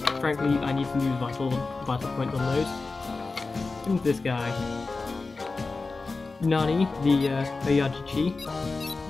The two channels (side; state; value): right; quieter; 3.8 dB